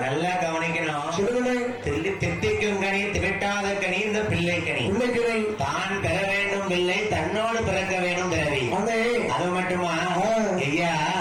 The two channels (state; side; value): identical; both; correlation 1.00